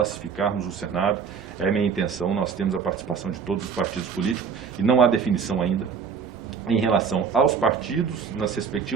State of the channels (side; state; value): left; quieter; 6.3 dB